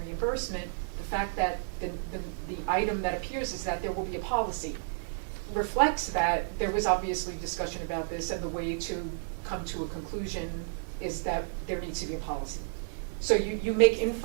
the fact that the item that appears is that there will be a policy reflects that there was obviously discussion about this, and the way to come to a conclusion is that there needs to be a policy. So you make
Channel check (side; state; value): left; silent; digital silence